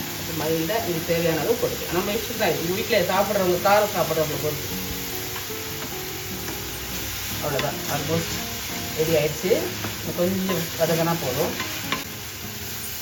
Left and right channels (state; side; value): identical; both; correlation 1.00